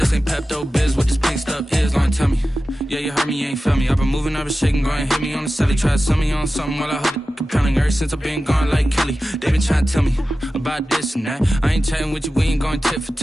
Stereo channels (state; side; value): normal; both; correlation 0.94